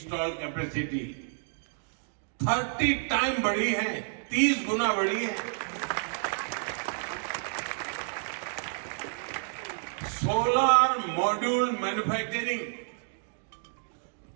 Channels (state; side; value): silent; left; digital silence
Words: capacity 30 time बढ़ी है, 30 गुना बढ़ी है। सोलर मॉड्यूल मैन्युफैक्चरिंग